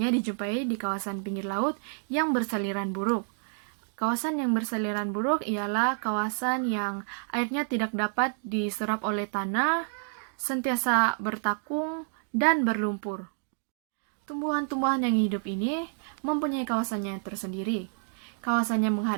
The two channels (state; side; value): silent; left; 59 dB below the other